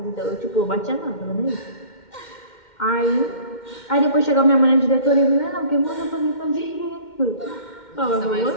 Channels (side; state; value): right; late; 2.1 ms